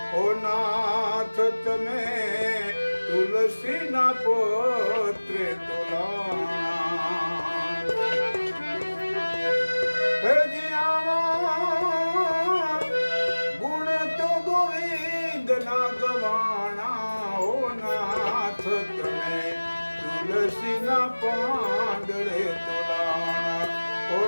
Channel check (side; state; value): both; inverted; correlation -1.00